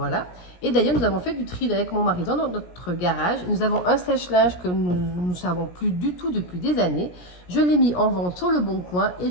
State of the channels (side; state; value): right; late; 17 ms